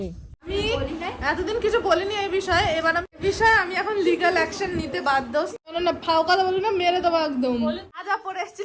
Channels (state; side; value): identical; both; correlation 1.00